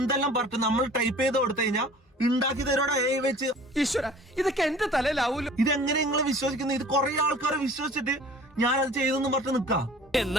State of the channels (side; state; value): both; normal; correlation 0.47